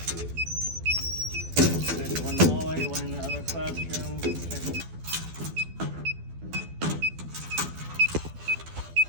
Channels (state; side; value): late; left; 12 ms